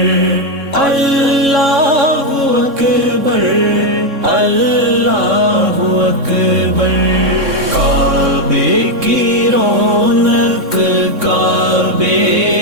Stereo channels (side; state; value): left; late; 3.6 ms